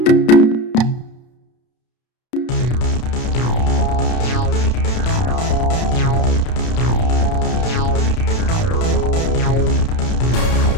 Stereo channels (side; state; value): right; late; 32 ms